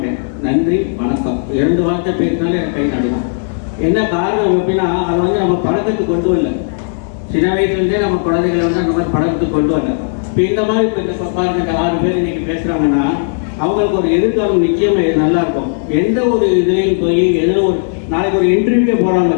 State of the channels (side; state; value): right; silent; digital silence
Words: நன்றி வணக்கம் 2 வார்த்தை பேசினாலே எனக்கு கை நடுவோம். என்ன காரணம் அப்படின்னா அதை வந்து நம்ம பழக்கத்துக்கு கொண்டு வரல. சின்ன வயசுலேருந்தே நம்ம குழந்தைகளை வந்து அந்த மாதிரி பழக்கத்துக்கு கொண்டு வரல. இப்போ இந்த மாதிரி இப்போ பாருங்க 6 பேர் இன்னைக்கு பேசுகிறாங்கன்னா அவங்களுக்கு ஒரு எதிர்காலம் நிச்சயமாக நல்லா இருக்கும். எந்த ஒரு இதுலேயும் போய் எதில் நாளைக்கு ஒரு இன்டர்வியூவே போகிறாங்க